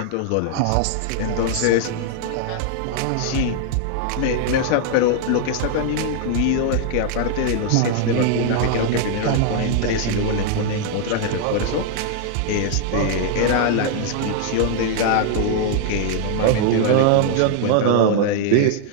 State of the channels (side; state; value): both; different; correlation -0.01